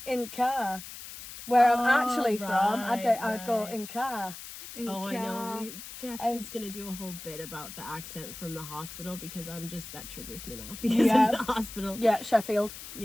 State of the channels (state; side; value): noise; left; hiss, 12 dB below the sound